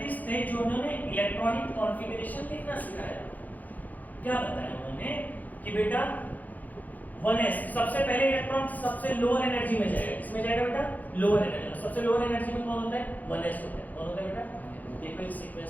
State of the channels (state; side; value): late; right; 0.081 ms